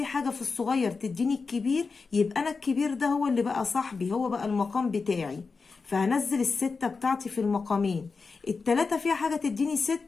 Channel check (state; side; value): quieter; right; 4.6 dB